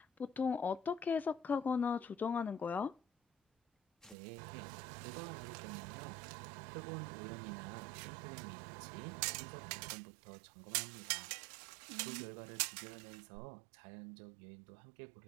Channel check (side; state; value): left; drops out; at 4.2 s